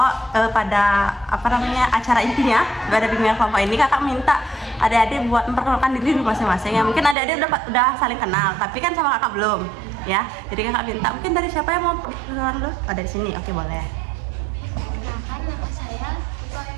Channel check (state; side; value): drops out; left; at 7.2 s